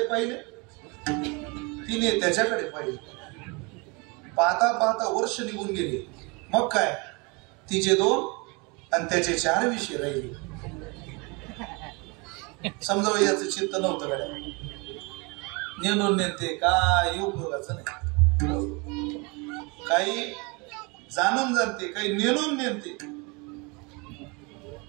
पाहिले, तिने त्याच्याकडे पाहिले. पाहता पाहता वर्ष निघून गेले. मग काय तिचे 2 आणि त्याचे 4 विषय राहिले. समजा याचं चित्त नव्हतं गड्या. नेणून नेते काय उपयोगाचं नाही. काही जाणून जाणते, काही नेणून नेमते,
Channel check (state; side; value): quieter; left; 29.1 dB